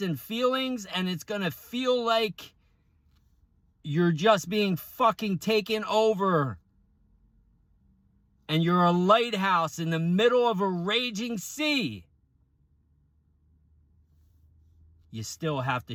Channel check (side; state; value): both; identical; correlation 1.00